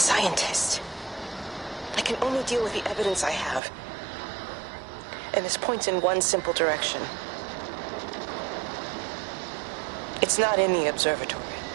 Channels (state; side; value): drops out; left; at 3.6 s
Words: I can only deal with the evidence I have. And this points in one simple direction. It's not in the observatory.